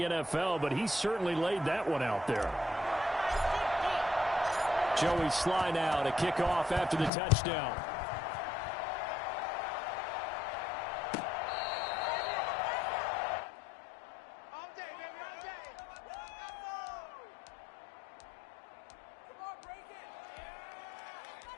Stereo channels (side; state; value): right; drops out; at 7.1 s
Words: NFL, but he certainly laid that one out there. Joey Sly now to kick off after the touchdown.